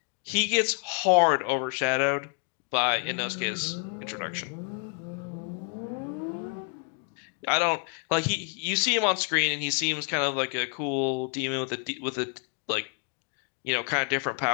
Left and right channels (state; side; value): quieter; right; 39.1 dB